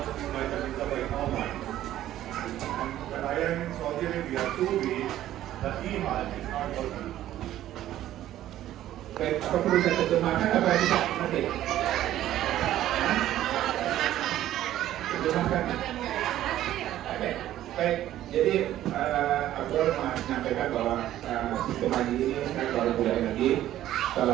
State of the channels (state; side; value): quieter; left; 13.0 dB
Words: apply the visa by online. And when I am in Saudi Arabia 2 weeks, the e-Hajj is not working. Baik, apa perlu saya terjemahkan apa bisa nanti? Terjemahkan. Oke, baik. Jadi aku menyampaikan bahwa sistem haji ini kan baru mulai lagi